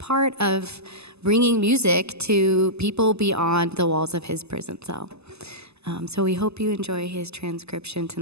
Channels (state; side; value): late; left; 0.79 ms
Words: of bringing music to people beyond the walls of his prison cell. So we hope you enjoy his transcription